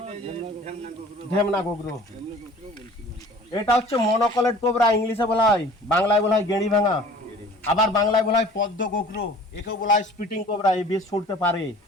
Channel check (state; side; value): normal; both; correlation 0.47